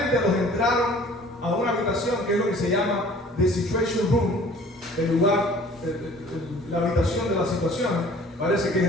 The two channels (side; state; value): both; normal; correlation 0.51